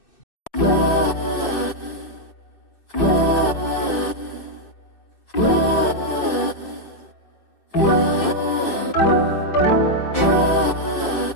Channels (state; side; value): late; right; 2.6 ms